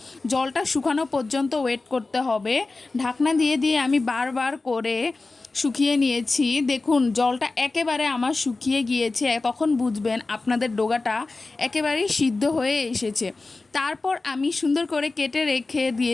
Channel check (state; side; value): quieter; right; 3.5 dB